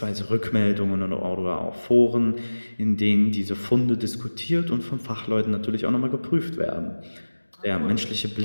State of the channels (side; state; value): both; inverted; correlation -1.00